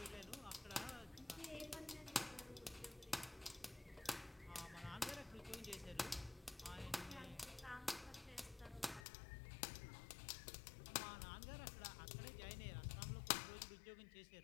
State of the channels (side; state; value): right; drops out; at 9.1 s